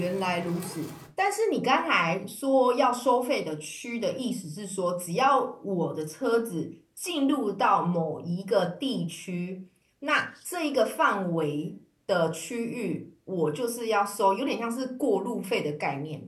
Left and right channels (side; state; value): both; identical; correlation 1.00